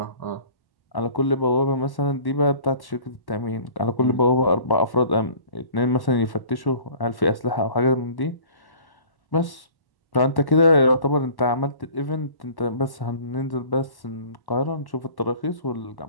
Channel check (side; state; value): right; late; 1.1 ms